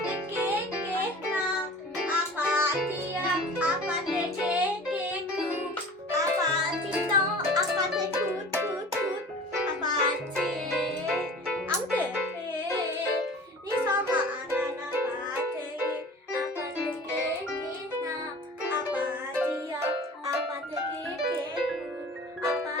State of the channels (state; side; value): normal; both; correlation 0.41